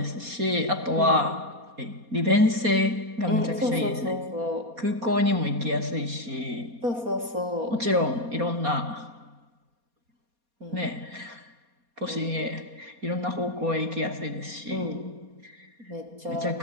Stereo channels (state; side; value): late; left; 4.2 ms